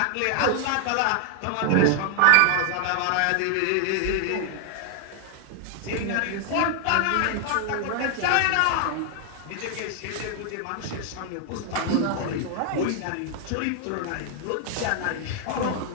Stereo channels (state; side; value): different; both; correlation 0.00